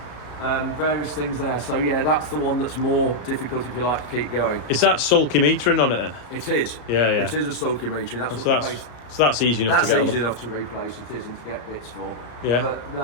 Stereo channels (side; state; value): right; late; 33 ms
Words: Various things there. So yeah, that's the one that's more difficult if you like to keep going. Is that sulky metering on it then? It is. Yeah, yeah. It is a sulky metering. That's what So the base. that's easy enough That's to get easy on. enough to replace. It is, and to get bits for. Yeah. But